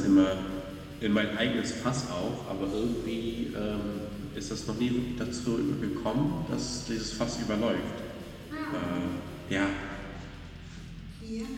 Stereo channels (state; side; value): identical; both; correlation 1.00